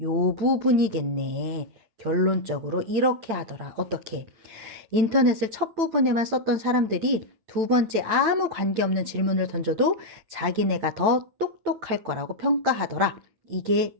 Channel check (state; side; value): late; left; 9.0 ms